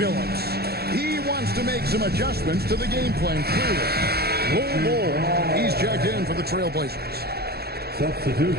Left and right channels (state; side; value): late; left; 0.46 ms